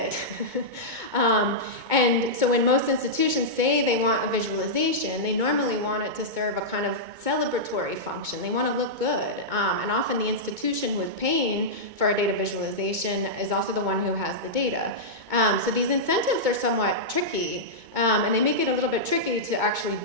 And so when most institutions say they want a visualization, they normally want it to serve a kind of celebratory function. They want to look good. And often the institution who is paying for a data visualization is also the one who has the data. So these incentives are somewhat tricky, and they make it a little bit tricky to actually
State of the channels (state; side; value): late; left; 2.2 ms